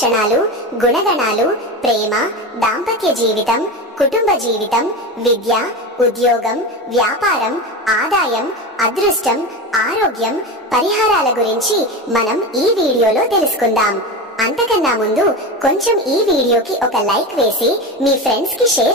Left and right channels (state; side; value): normal; both; correlation 0.23